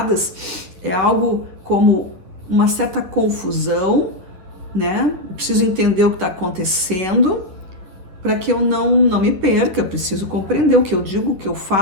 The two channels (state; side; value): late; left; 11 ms